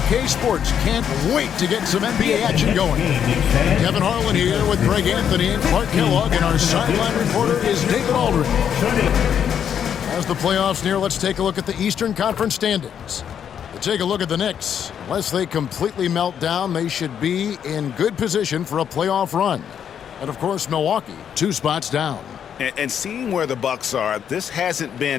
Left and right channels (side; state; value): right; quieter; 8.6 dB